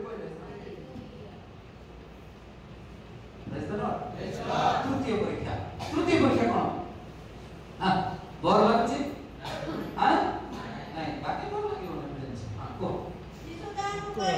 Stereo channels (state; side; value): identical; both; correlation 1.00